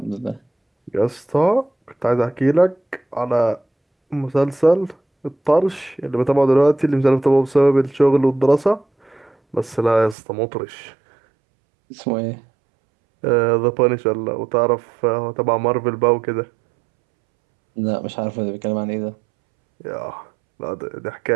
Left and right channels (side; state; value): left; drops out; at 10.2 s